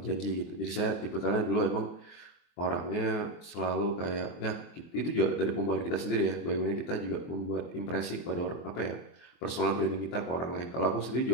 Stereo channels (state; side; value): late; right; 24 ms